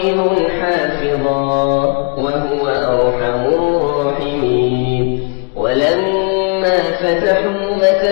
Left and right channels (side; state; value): right; quieter; 33.8 dB